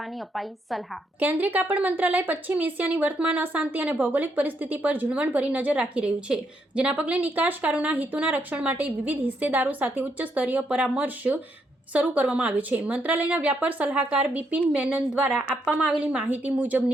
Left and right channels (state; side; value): normal; both; correlation 0.76